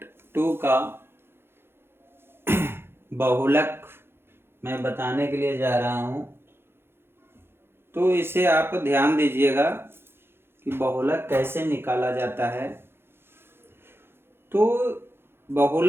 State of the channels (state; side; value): late; left; 0.11 ms